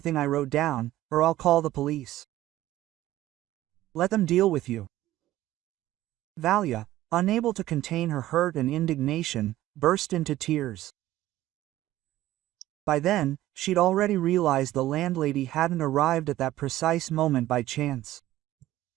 I wrote down, or I'll call the police. Let them deal with you." Valia, unable to contain her hurt and indignation, burst into tears. By then, she'd already realized the landlady hadn't arrived at that precise moment by chance.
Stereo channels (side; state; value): left; quieter; 14.9 dB